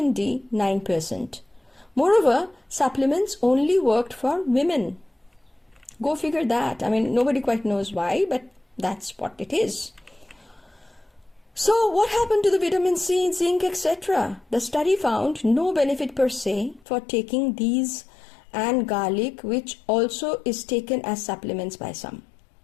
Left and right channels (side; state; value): right; drops out; at 16.9 s